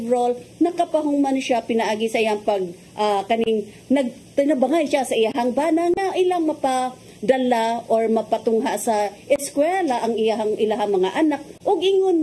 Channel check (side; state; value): both; identical; correlation 1.00